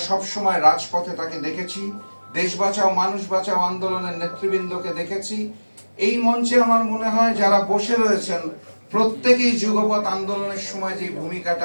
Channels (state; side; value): inverted; both; correlation -1.00